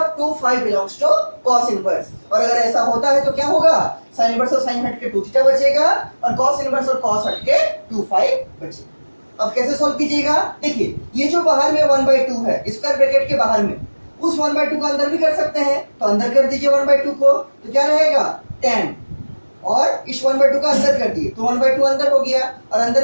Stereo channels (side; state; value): both; inverted; correlation -1.00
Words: 2 five belongs to cos inverse. और अगर ऐसा होता है तो क्या होगा, साइन इनवर्स और साइन हट के 2 थीटा बचेगा और cos इनवर्स और cos हट के 2 फाइव बचेगा। अब कैसे सॉल्व कीजिएगा, देखिए ये जो बाहर में 1/2 है स्क्वायर ब्रैकेट के बाहर में, उस 1/2 को अंदर भी कर सकते हैं, तो अंदर कर दीजिए 1/2 को, तो क्या रहेगा tan, और इस 1/2 का अंदर कर दिए तो 1/2 अंदर हो गया और